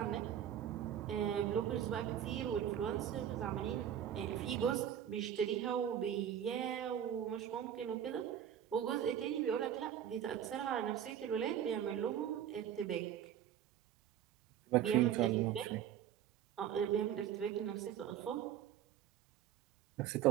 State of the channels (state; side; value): quieter; left; 9.9 dB